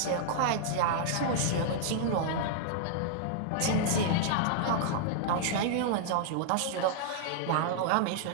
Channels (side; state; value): both; different; correlation -0.01